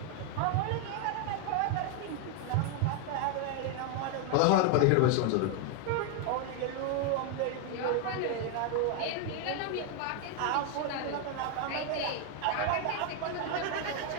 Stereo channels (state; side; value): different; both; correlation 0.01